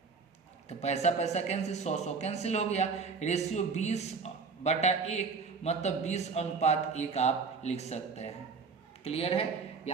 तो पैसा पैसा कैंसिल, 100 कैंसिल हो गया। रेशियो 20/1 मतलब 20:1 आप लिख सकते हैं। क्लियर है,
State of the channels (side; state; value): left; quieter; 5.0 dB